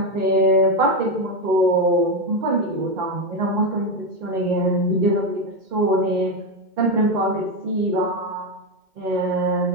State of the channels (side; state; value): left; late; 2.1 ms